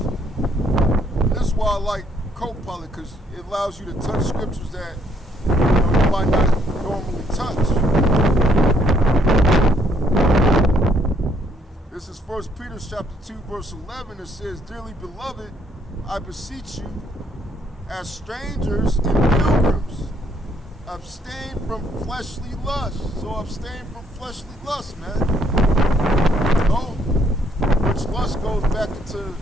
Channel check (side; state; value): both; normal; correlation 0.69